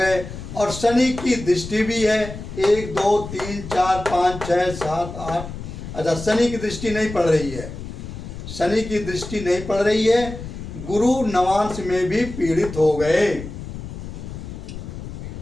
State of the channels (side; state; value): left; noise; rumble, 10 dB below the sound